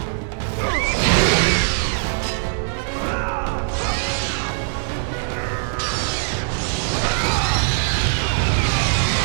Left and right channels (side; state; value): left; silent; digital silence